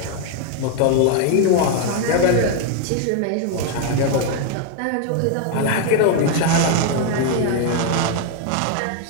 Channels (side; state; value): both; different; correlation 0.00